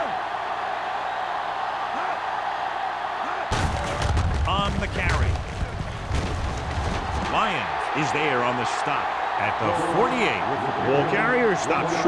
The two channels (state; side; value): identical; both; correlation 1.00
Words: On the carry. Lyons is there on the stop at the 48. Ball carrier stops